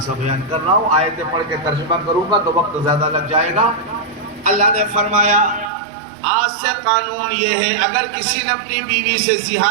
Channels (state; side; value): drops out; left; at 5.7 s